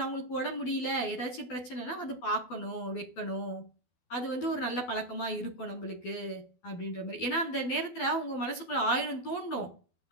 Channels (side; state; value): right; late; 12 ms